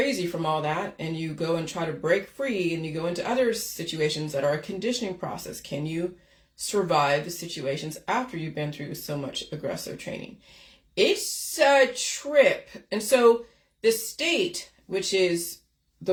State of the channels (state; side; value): identical; both; correlation 1.00